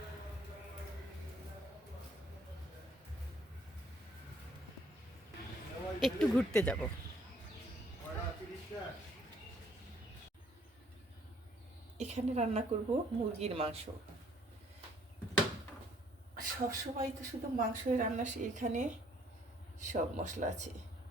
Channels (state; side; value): normal; both; correlation 0.63